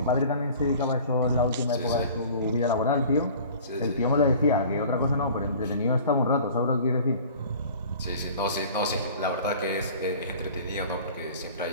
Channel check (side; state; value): both; inverted; correlation -0.45